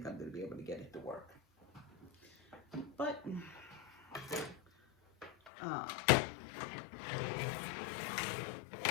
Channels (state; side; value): drops out; right; at 5.5 s